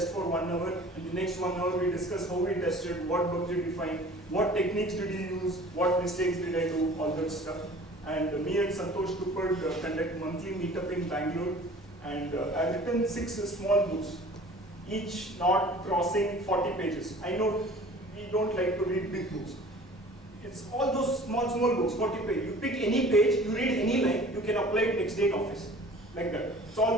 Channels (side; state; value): both; normal; correlation 0.47